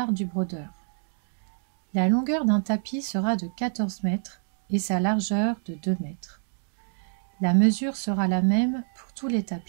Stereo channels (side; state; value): left; silent; 60 dB below the other